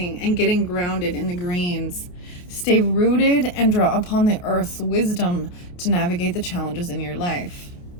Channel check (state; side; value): late; right; 28 ms